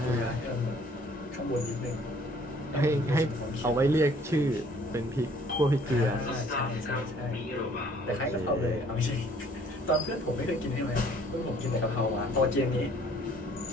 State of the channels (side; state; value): both; normal; correlation 0.58